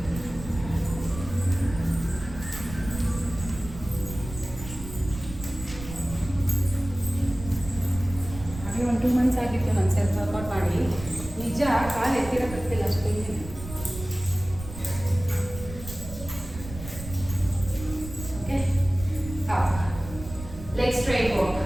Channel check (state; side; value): noise; right; rumble, 12 dB below the sound